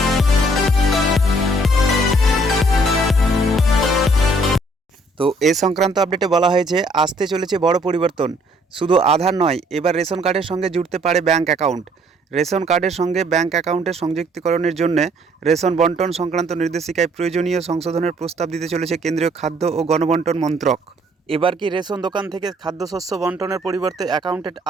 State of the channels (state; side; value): normal; both; correlation 0.63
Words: তো এ সংক্রান্ত আপডেটে বলা হয়েছে আসতে চলেছে বড় পরিবর্তন। শুধু আধার নয়, এবার রেশন কার্ডের সঙ্গে জুড়তে পারে ব্যাঙ্ক অ্যাকাউন্ট। রেশন কার্ডের সঙ্গে ব্যাঙ্ক অ্যাকাউন্টের সংযুক্তিকরণের জন্য রেশন বন্টন সংক্রান্ত নির্দেশিকায় প্রয়োজনীয় সংশোধনের প্রস্তাব দিতে চলেছে কেন্দ্রীয় খাদ্য ও গণবন্টন মন্ত্রক। এবার কি রেশন দোকান থেকে খাদ্যশস্য বন্টনের পরিবর্তে অ্যাকাউন্টে